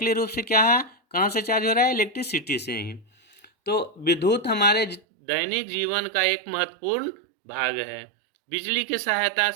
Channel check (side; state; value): left; drops out; at 5.0 s